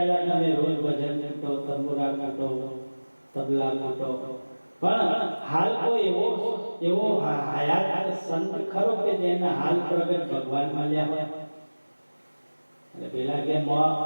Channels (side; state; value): both; inverted; correlation -1.00